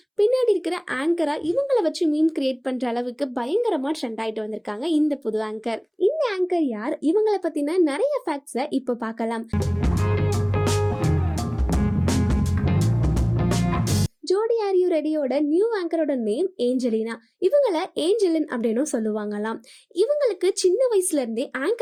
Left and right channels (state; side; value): identical; both; correlation 1.00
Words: பின்னாடி இருக்கிற ஆங்கரா இவங்களை வச்சு மீம் கிரியேட் பண்ற அளவுக்கு பயங்கரமா ட்ரெண்ட் ஆயிட்டு வந்திருக்காங்க இந்த புது ஆங்கர். இந்த ஆங்கர் யார், இவங்களை பத்தின நிறைய ஃபேக்ட்ஸை இப்போ பார்க்கலாம். ஜோடி ஆர் யூ ரெடியோட நியூ ஆங்கரோட நேம் ஏஞ்சலினா. இவங்கள ஏஞ்சலின் அப்படின்னு சொல்லுவாங்களாம். இவங்களுக்கு சின்ன வயசுல இருந்தே